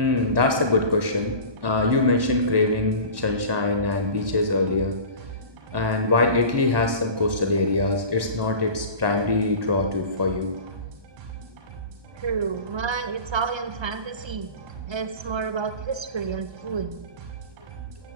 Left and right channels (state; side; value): late; left; 1.1 ms